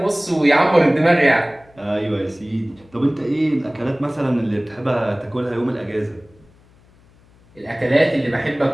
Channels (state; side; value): noise; left; hum, 29 dB below the sound